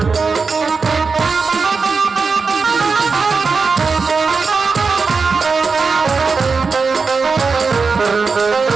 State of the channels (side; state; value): left; quieter; 4.8 dB